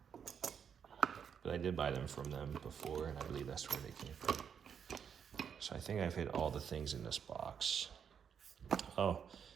but I did buy them from them before, and I believe that's where they came from. So I think I've hit all the things in this box. Oh,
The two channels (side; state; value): left; quieter; 7.5 dB